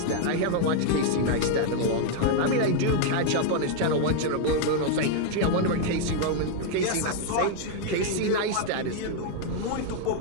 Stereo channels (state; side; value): different; both; correlation 0.00